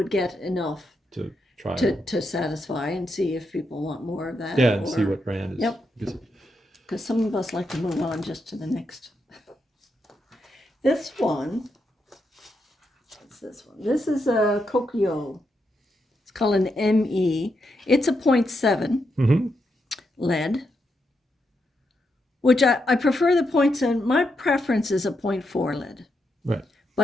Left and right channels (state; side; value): normal; both; correlation 0.83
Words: get enough to try to satisfy and see if people want more of that. Yeah, and see what brand is. Yep. Because some of us like to move on just to the next. This one. What's this one? This is a Kokyo. It's called an ME. It's a 0.7 lead, which I prefer the 0.7. My preference is a 0.4 lead. Right.